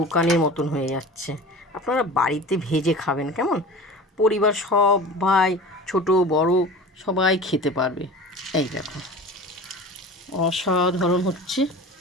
মতন হয়ে যাচ্ছে। আপনারা বাড়িতে ভেজে খাবেন। কেমন? পরিবার সবাই, ছোট বড় সবাই খেতে পারবে। এই দেখো অসাধারণ হচ্ছে।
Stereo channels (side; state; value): both; normal; correlation 0.37